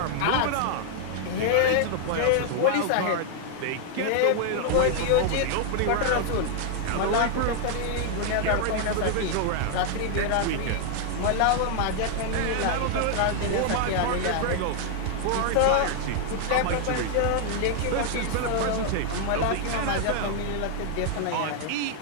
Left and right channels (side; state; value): both; different; correlation -0.01